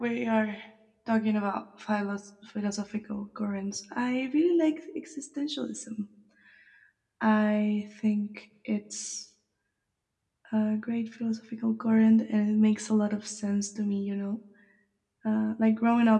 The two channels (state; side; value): identical; both; correlation 1.00